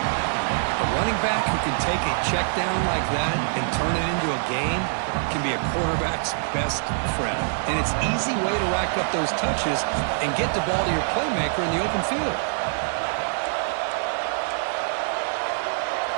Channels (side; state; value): left; silent; 60 dB below the other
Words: A running back who can take a check down like that and turn it into a gain can be a quarterback's best friend. And it's an easy way to rack up those touches and get the ball to your playmaker in the open field.